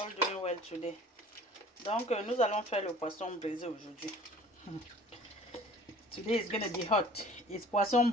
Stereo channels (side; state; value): both; normal; correlation 0.48